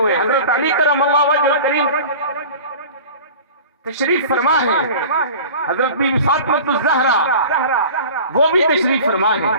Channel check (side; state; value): both; inverted; correlation -0.39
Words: حضرت علی کرم اللہ وجہ کریم تشریف فرما ہے، حضرت بی بی فاطمہ الزہرا وہ بھی تشریف فرما ہے.